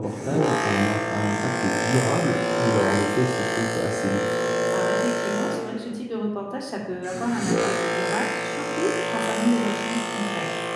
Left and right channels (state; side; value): identical; both; correlation 1.00